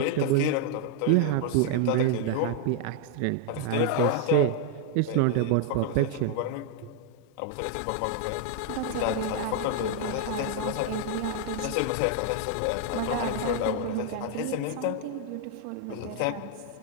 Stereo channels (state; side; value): different; both; correlation 0.00